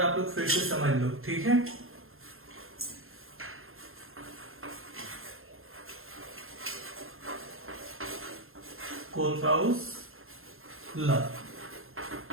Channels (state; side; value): late; left; 0.61 ms